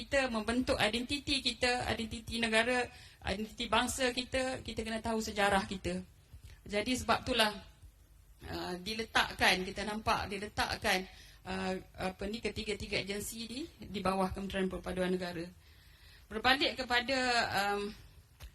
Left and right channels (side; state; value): both; identical; correlation 1.00